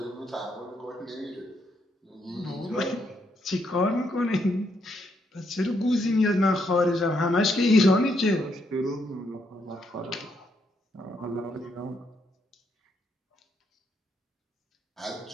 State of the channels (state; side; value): normal; both; correlation 0.76